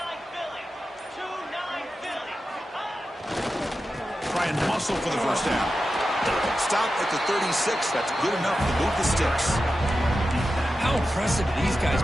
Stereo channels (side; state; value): both; normal; correlation 0.92